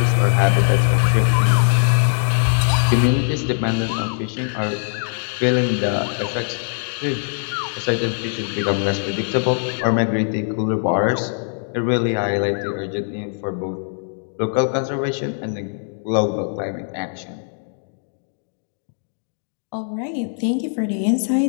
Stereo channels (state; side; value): silent; right; digital silence